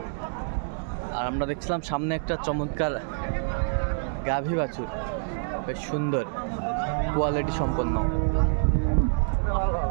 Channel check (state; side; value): silent; left; digital silence